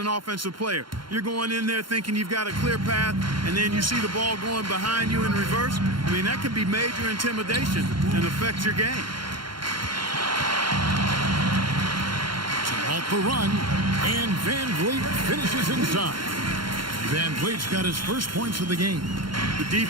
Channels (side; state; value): left; late; 0.73 ms